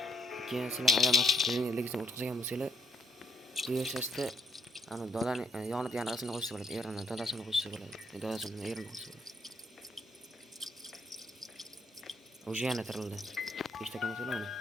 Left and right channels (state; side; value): normal; both; correlation 0.69